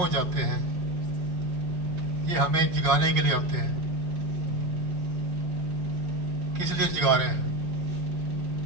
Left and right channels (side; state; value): left; late; 5.5 ms